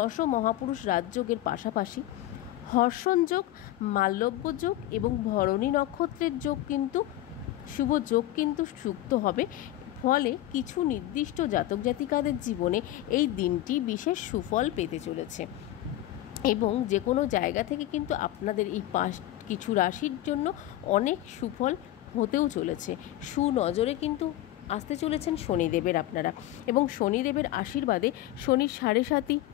মহাপুরুষ রাজযোগের পাশাপাশি হর্ষণ যোগ, মাল্যব্য যোগ এবং ভরণী নক্ষত্রের যোগ কিন্তু শুভ যোগ কিন্তু যুক্ত হবে। ফলে কিছু নির্দিষ্ট জাতক জাতিকাদের জীবনে এই দিনটি বিশেষ সুফল পেতে চলেছে এবং যে কোনো জায়গা থেকে কিন্তু আপনাদের এই কিছু রাশির জন্য অনেক সুফল হতেও চলেছে। সুনজরে কিন্তু আসতে চলেছেন শনিদেবের আপনারা, এবং শনিদেবের আশীর্বাদে শনির 7.5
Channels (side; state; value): right; quieter; 14.5 dB